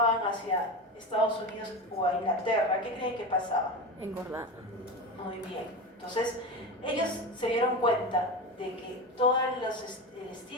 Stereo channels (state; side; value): normal; both; correlation 0.23